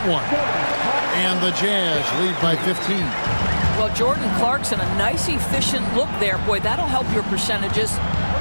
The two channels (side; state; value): both; inverted; correlation -1.00